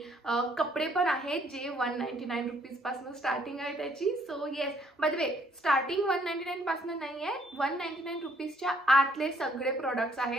कपडे पण आहेत जे 199 रुपीज पासून स्टार्टिंग आहे त्याची। So yes, by the way starting 199 पासून नाही आहे, 199 रुपीजच्या आतले सगळे प्रोडक्ट्स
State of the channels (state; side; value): normal; both; correlation 0.66